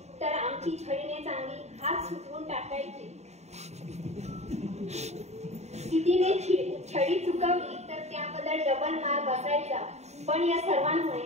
तर आमची छडीने चांगली हात सुटवून टाकायची. तिने छडी चुकवली तर त्याबद्दल डबल मार बसायचा. पण या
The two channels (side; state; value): left; late; 0.32 ms